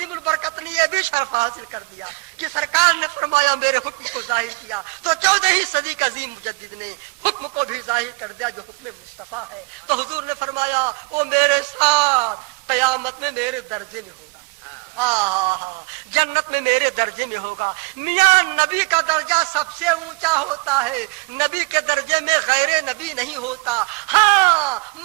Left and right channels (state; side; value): quieter; left; 28.3 dB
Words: البرکت نے یہ بھی شرف حاصل کر دیا کہ سرکار نے فرمایا میرے حکم کو ظاہر کیا، تو 14ویں صدی کا عظیم مجدد نے حکم کو بھی ظاہر کر دیا جو حکم مصطفیٰ ہے۔ تو حضور نے فرمایا وہ میرے ساتھ قیامت میں میرے درجے میں ہوگا، جنت میں میرے درجے میں ہوگا۔ میاں نبی کا درجہ سب سے اونچا ہوتا ہے، نبی کے درجے میں غیر نبی نہیں ہوتا، ہاں